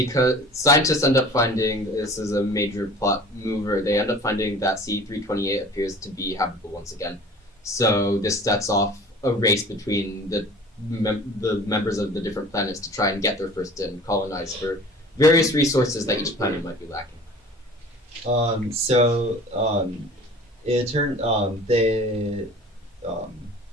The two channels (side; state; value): both; normal; correlation 0.44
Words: scientists end up finding, this is a major plot mover, they end up finding that C328 appears to be habitable once again. So this sets off a race between the the members of the different planets to try and get there first and colonize for various resources that each planet might be lacking. It turned they